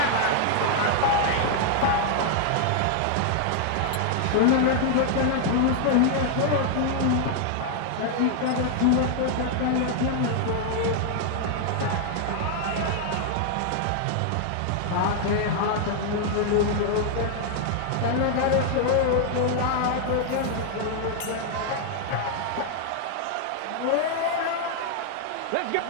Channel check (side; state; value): both; different; correlation 0.00